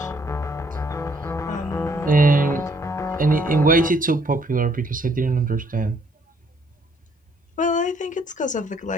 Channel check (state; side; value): normal; both; correlation 0.66